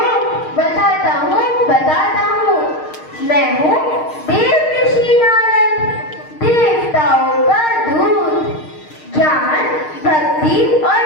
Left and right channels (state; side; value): late; right; 6.5 ms